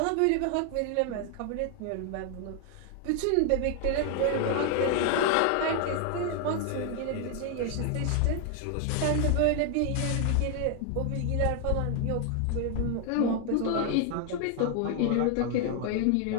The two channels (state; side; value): different; both; correlation 0.00